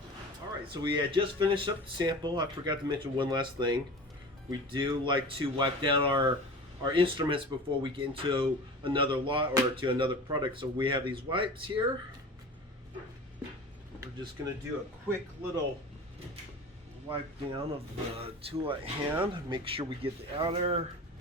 All right, so we had just finished up the sample. I forgot to mention one last thing. We do like to wipe down our instruments before we get into another lot or to another product. So we have these wipes here. We're just going to do a quick little wipe down of the tool at hand. Make sure we get the outer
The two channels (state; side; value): normal; both; correlation 0.36